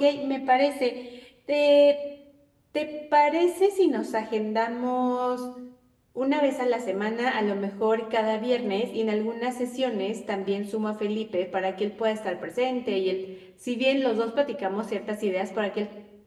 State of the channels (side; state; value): both; identical; correlation 1.00